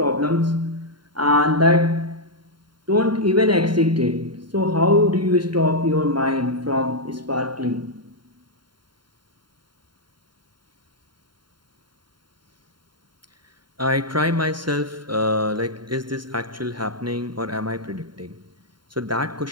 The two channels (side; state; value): left; late; 0.72 ms